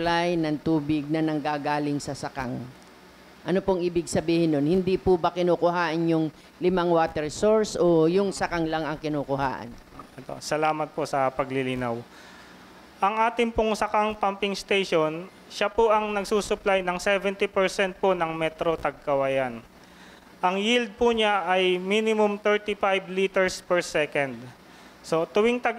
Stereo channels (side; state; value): both; identical; correlation 1.00